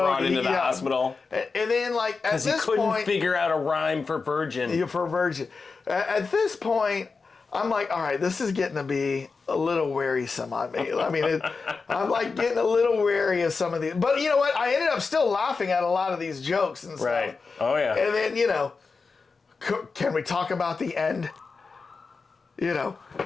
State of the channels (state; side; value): quieter; right; 4.6 dB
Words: into the hospital, and then like at this point, because he couldn't figure out a rhyme for virgin. Yeah, for virgin. At this point, I'm like, all right, this is getting to be a little wearisome on me. I mean, I'm like getting a little wary of some of these. But you know what? I ended up still laughing at a lot of these jokes and stuff. Right. Oh yeah. And then can we talk about the end?